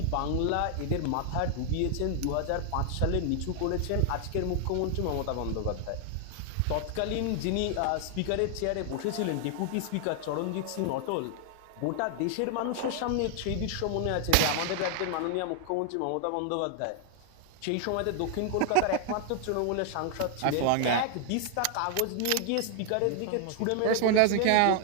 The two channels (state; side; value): different; both; correlation 0.00